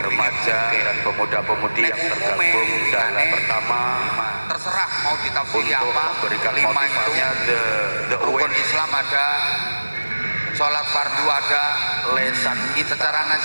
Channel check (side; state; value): both; inverted; correlation -1.00